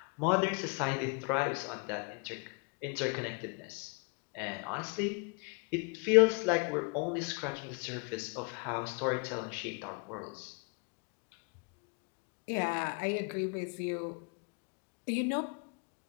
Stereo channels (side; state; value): right; quieter; 34.9 dB